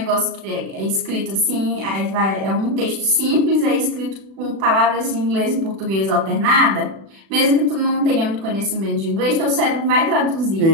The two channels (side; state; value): left; late; 36 ms